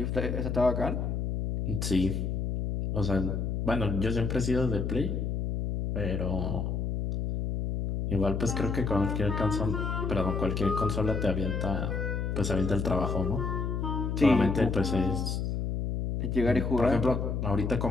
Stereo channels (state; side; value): noise; left; hum, 1 dB below the sound